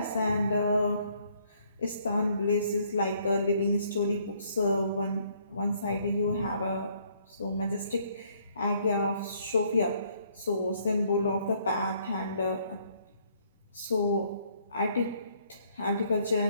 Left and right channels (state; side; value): inverted; both; correlation -0.66